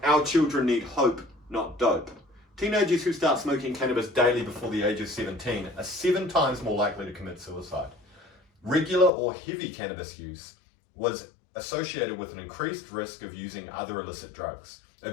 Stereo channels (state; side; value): drops out; right; at 9.1 s